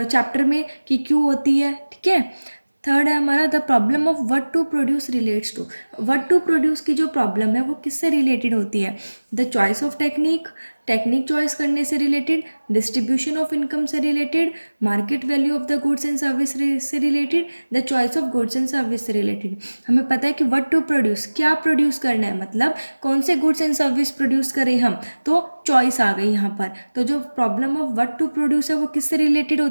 में कि क्यों होती है, ठीक है। थर्ड है हमारा, the problem of what to produce relates to. What to produce की जो प्रॉब्लम है वो किससे रिलेटेड होती है? The choice of technique, technique choice करने से रिलेटेड, डिस्ट्रीब्यूशन ऑफ इनकम से related, market value of the goods and service से related, the choice of goods and service से रिलेटेड। हमें पता है कि व्हाट टू प्रोड्यूस, क्या प्रोड्यूस करना है, मतलब कौन से गुड्स एंड सर्विस प्रोड्यूस करें हम, तो चॉइस आ गई यहाँ पर। तो जो problem of what to produce है वो किससे रिलेटेड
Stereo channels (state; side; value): inverted; both; correlation -1.00